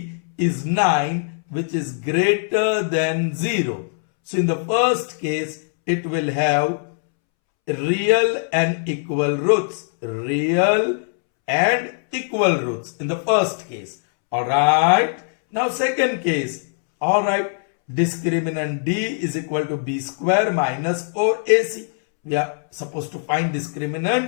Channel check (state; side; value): silent; right; 65 dB below the other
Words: is 9, which is greater than 0. So in the first case, it will have real and equal roots. Real and equal roots in the first case. Alright. Now second case. Alright. Discriminant d is equal to b square minus 4ac. we are supposed to find